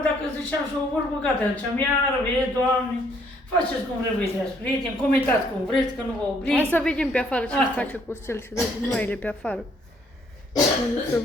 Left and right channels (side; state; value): both; normal; correlation 0.66